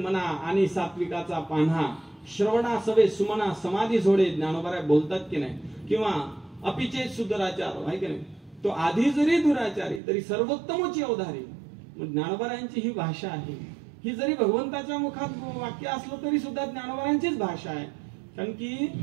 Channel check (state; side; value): drops out; left; at 10.0 s